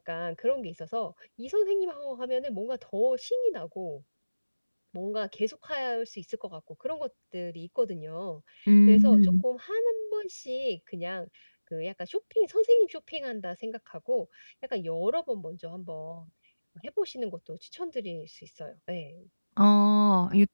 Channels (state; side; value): inverted; both; correlation -1.00